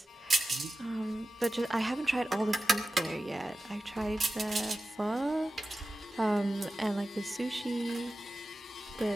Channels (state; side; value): normal; both; correlation 0.94